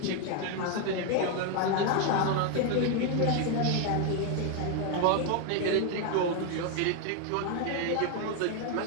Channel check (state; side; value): different; both; correlation 0.01